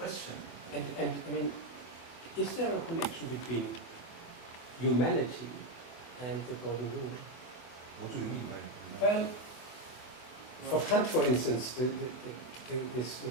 And I mean, is there a connection between humanity and the golden rule? What do you mean by Well, for Kant, for instance, the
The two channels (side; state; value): right; late; 24 ms